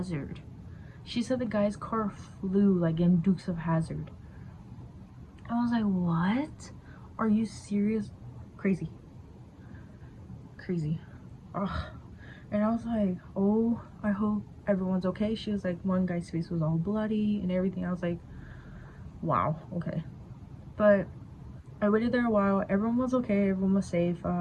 She said the guy's car flew like in Dukes of Hazzard. I was like, what? Are you serious? Crazy. Ugh. And I was like, oh, I hope everyone's okay. She was like, one guy's face was all bloody and everything. I was like, wow, okay. But I waited there a while. Everyone was okay. Everyone was safe.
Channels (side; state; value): both; identical; correlation 1.00